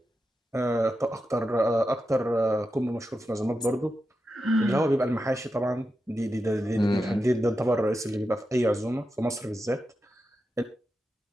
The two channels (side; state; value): both; normal; correlation 0.89